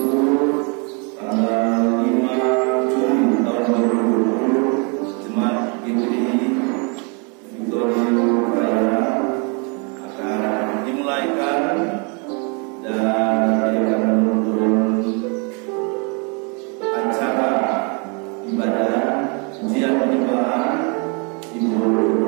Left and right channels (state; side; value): quieter; left; 34.7 dB